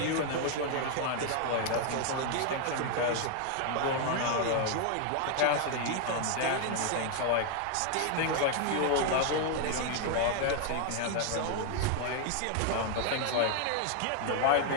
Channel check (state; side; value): different; both; correlation 0.00